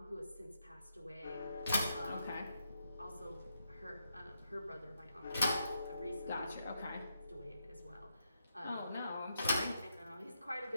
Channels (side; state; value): both; inverted; correlation -0.81